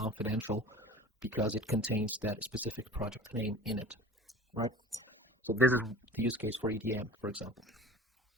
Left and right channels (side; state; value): both; normal; correlation 0.42